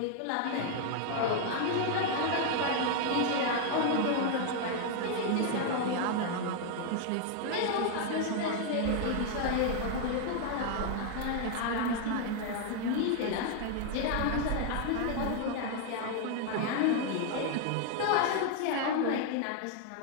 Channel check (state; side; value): different; both; correlation 0.00